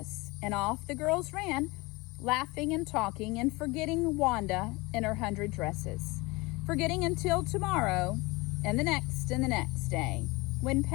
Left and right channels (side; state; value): right; quieter; 24.0 dB